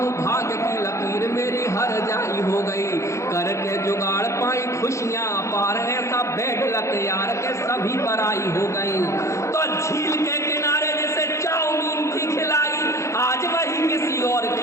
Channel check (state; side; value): late; right; 0.14 ms